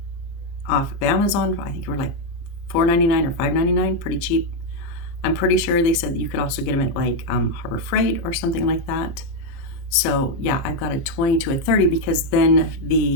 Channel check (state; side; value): late; right; 29 ms